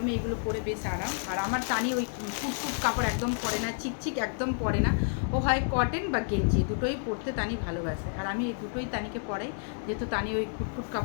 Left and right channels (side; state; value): right; silent; digital silence